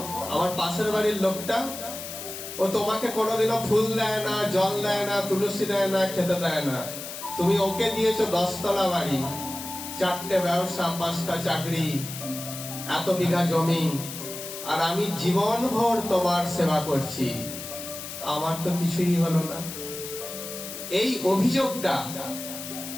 আমার পাশের বাড়ির লোকটা, ও তোমাকে কোনোদিনও ফুল দেয় না, জল দেয় না, তুলসী দেয় না, খেতে দেয় না। তুমি ওকে দিয়েছো 10 তলা বাড়ি, 4টে ব্যবসা, 5টা চাকরি, এত বিঘা জমি, আর আমি জীবন ভর তোমার সেবা করছি, আমার তো কিছুই হলো না। এই অভিযোগটা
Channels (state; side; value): noise; left; hiss, 9 dB below the sound